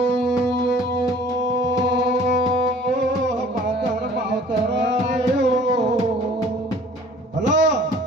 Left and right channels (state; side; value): normal; both; correlation 0.51